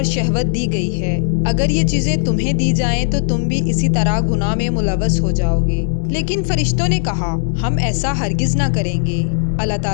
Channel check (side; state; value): right; silent; digital silence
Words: شہوت دی گئی ہے، اگر یہ چیزیں تمہیں دی جائیں تو تم بھی اسی طرح گناہ میں ملوث ہو جاؤ گے۔ لیکن فرشتوں نے کہا ہم ایسا ہرگز نہ کریں گے۔ اللہ